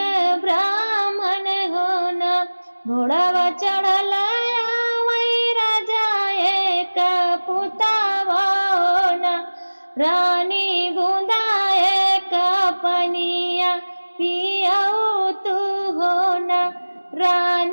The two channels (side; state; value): both; inverted; correlation -1.00